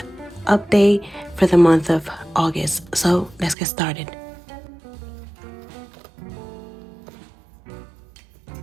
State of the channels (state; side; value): drops out; left; at 3.6 s